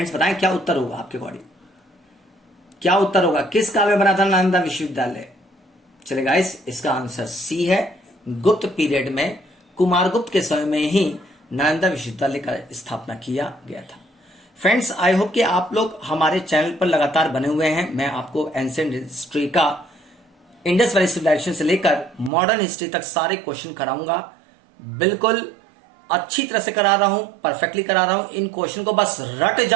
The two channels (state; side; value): drops out; left; at 22.3 s